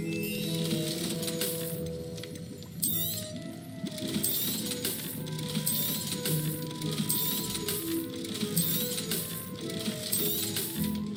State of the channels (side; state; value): both; identical; correlation 1.00